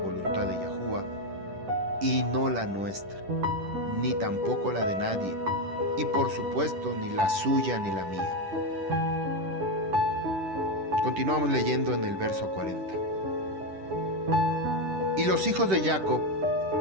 de Yahuwah y no la nuestra, ni tampoco la de nadie, y por supuesto ni la suya ni la mía. Continuamos leyendo en el verso 40. Y los hijos de Jacob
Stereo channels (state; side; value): late; left; 10 ms